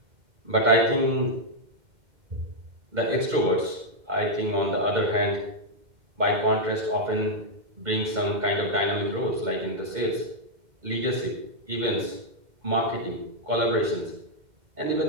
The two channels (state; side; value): late; left; 2.1 ms